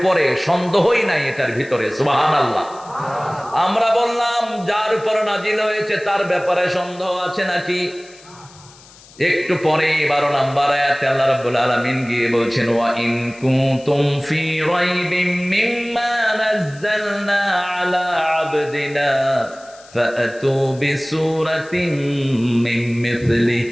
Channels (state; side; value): noise; left; hiss, 23 dB below the sound